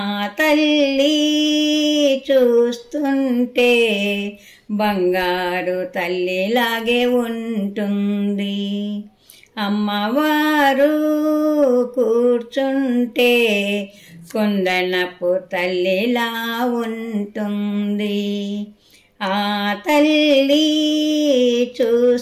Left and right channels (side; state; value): both; identical; correlation 1.00